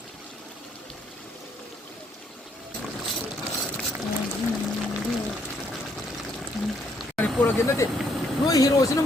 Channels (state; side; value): normal; both; correlation 0.70